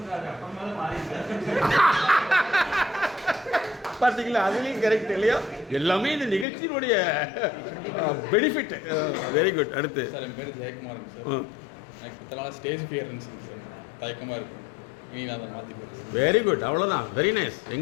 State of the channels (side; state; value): right; drops out; at 6.5 s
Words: பார்த்தீங்களா, அதுலேயும் கரெக்ட் இல்லையா? எல்லாமே இந்த நிகழ்ச்சியினுடைய பெனிஃபிட். Very good. அடுத்து சார், என் பேர் ஜெயக்குமார் சார். எனக்கு இத்தனை நாள் ஸ்டேஜ் ஃபியர் இருந்துச்சுங்க சார், தயக்கமாக இருக்கும். இனி நான் அதை மாற்றி போகிறேன். Very good. அவ்வளோதான். Very nice.